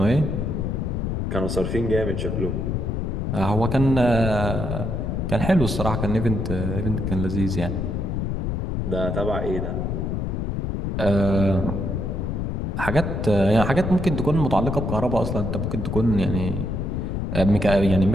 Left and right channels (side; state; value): left; noise; rumble, 1 dB below the sound